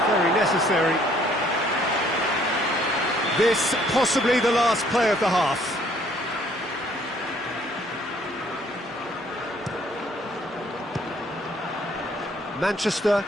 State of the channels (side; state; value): both; normal; correlation 0.62